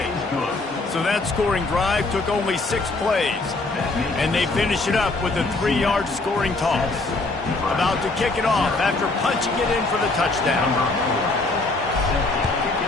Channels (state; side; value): quieter; right; 3.2 dB